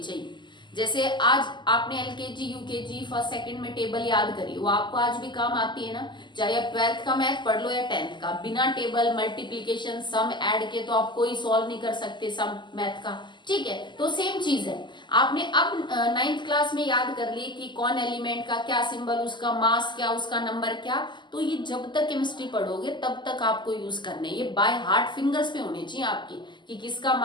जैसे आज आपने LKG UKG फर्स्ट सेकंड में टेबल याद करी, वो आपको आज भी काम आती है ना। चाहे आप 12th का मैथ पढ़ लो या 10th का, बिना टेबल, मल्टीप्लीकेशन, सम, ऐड के तो आप कोई सॉल्व नहीं कर सकते सम मैथ का। ठीक है, तो सेम चीज है, आपने अब 9th क्लास में याद कर ली कि कौन एलिमेंट का क्या सिंबल, उसका मास क्या, उसका नंबर क्या। तो ये जब तक केमिस्ट्री पढ़ोगे तब तक आपको यूज करने, ये बाय हार्ट फिंगर्स पे होने चाहिए आपकी कि किसका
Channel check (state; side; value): late; right; 0.22 ms